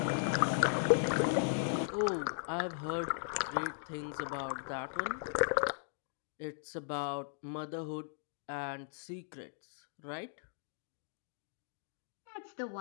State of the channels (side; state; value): right; silent; digital silence